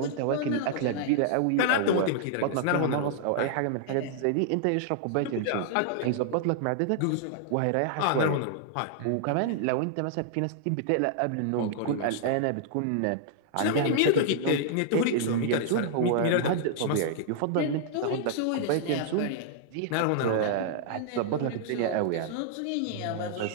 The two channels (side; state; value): both; different; correlation -0.01